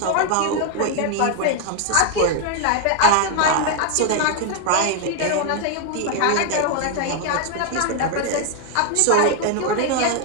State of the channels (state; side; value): different; both; correlation 0.00